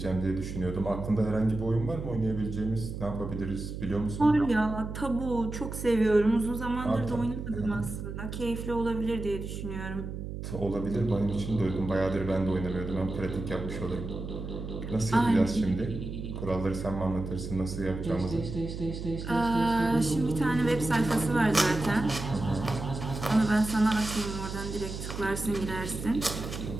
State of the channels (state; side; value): noise; right; hum, 7 dB below the sound